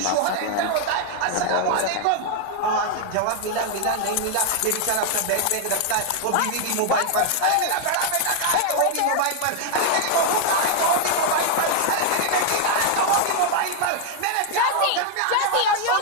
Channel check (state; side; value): different; both; correlation 0.00